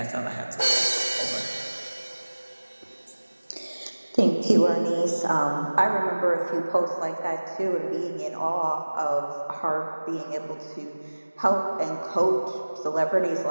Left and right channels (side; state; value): both; inverted; correlation -1.00